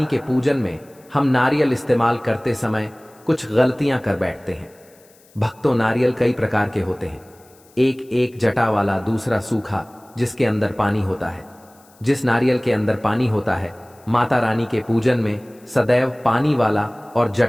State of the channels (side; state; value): left; noise; hiss, 29 dB below the sound